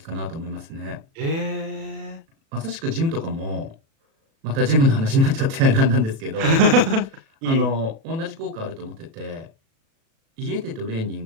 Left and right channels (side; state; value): left; late; 37 ms